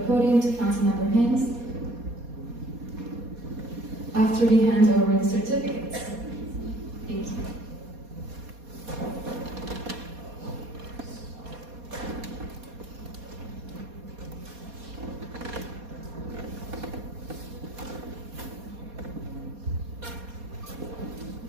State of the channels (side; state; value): left; late; 4.2 ms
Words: podium to Councilmember Hanks after we hand over the certificates. Thank you.